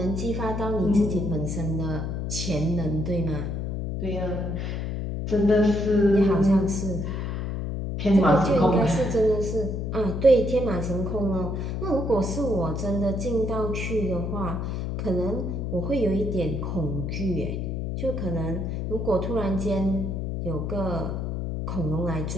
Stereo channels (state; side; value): noise; left; hum, 3 dB below the sound